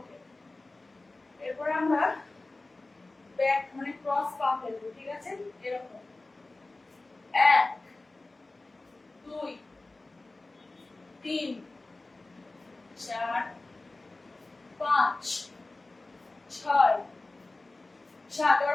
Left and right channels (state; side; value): quieter; right; 3.1 dB